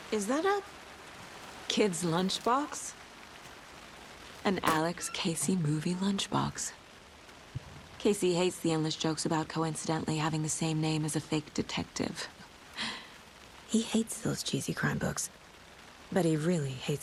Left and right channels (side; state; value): both; identical; correlation 1.00